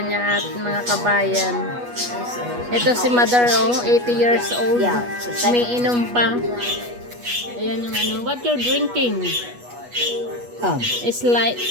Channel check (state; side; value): late; left; 8.3 ms